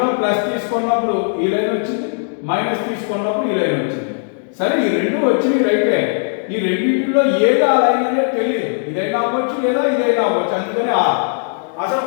ప్లస్ తీసుకున్నప్పుడు ఈ లైన్ వచ్చింది, మైనస్ తీసుకున్నప్పుడు ఈ లైన్ వచ్చింది. సరే, ఈ 2 వచ్చినాయి రైటే. ఈ రెండింటిలో ఏది ఆ లైన్ అనేది తెలియదు. ఇదైనా అవ్వచ్చు లేదా ఇదైనా అవ్వచ్చు, అందుకని అసలు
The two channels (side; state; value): right; silent; digital silence